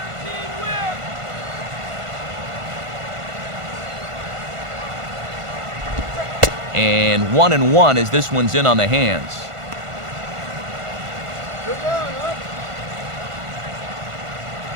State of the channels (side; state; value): left; late; 1.5 ms